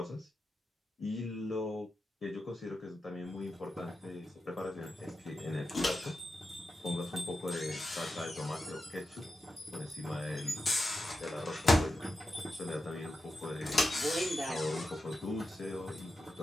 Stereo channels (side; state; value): both; normal; correlation 0.90